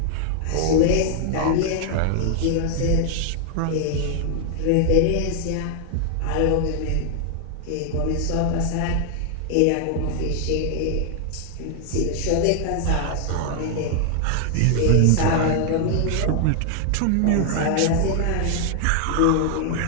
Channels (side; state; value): both; different; correlation 0.00